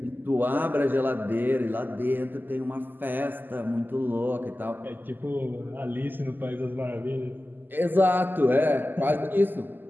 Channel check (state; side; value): late; left; 0.090 ms